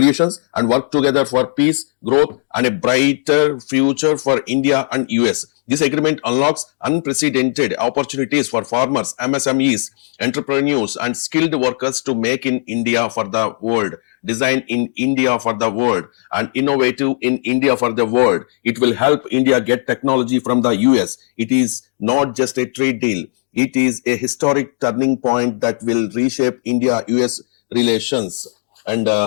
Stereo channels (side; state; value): right; silent; digital silence